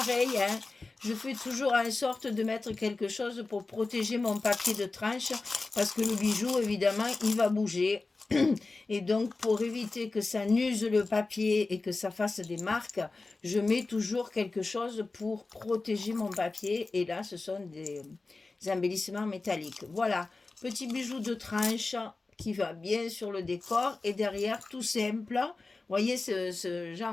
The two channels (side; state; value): right; quieter; 3.6 dB